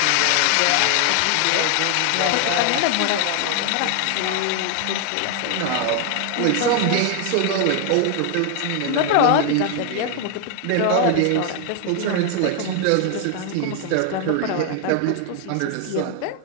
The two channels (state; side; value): different; both; correlation 0.00